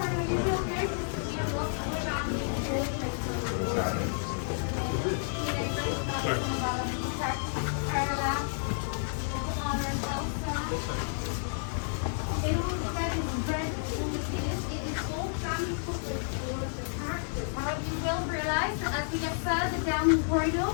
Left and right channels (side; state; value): right; silent; 57 dB below the other